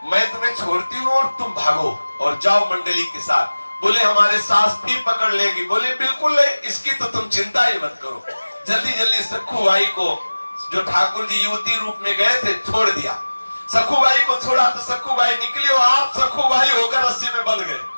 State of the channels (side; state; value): both; inverted; correlation -1.00